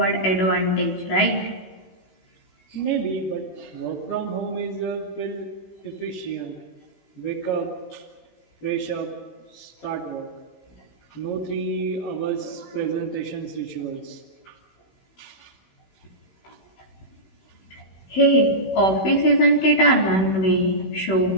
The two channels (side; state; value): right; late; 16 ms